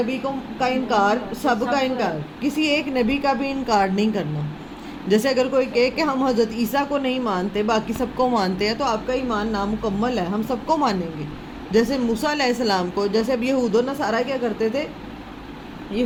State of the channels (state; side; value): identical; both; correlation 1.00